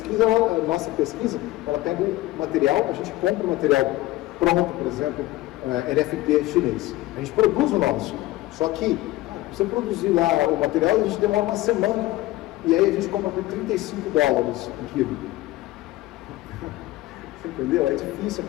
nossa pesquisa, ela pega o material, a gente compra o material pronto, por exemplo, LFP chinês. A gente produz o nosso. Só que, você produzir lá o material, a gente demora uma semana, e aí a gente compra por $35 um quilo. Entendeu? É difícil a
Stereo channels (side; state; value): right; quieter; 17.5 dB